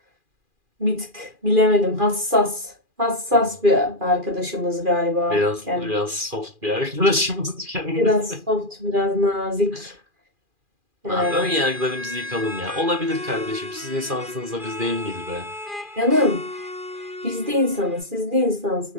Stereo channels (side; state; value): left; late; 2.4 ms